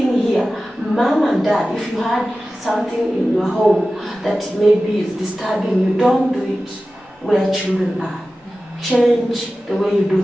here, mom and dad, if you had something in your home that maybe is disturbing you, don't do it where children are. Change the way you do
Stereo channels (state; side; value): normal; both; correlation 0.95